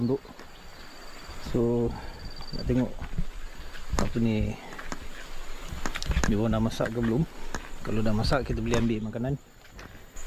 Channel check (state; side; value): identical; both; correlation 1.00